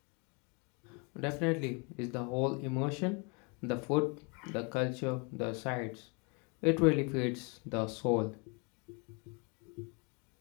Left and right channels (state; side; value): quieter; right; 32.7 dB